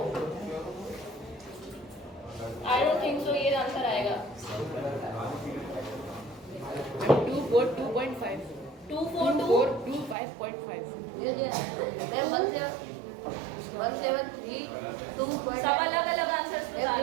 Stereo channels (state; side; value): drops out; left; at 10.2 s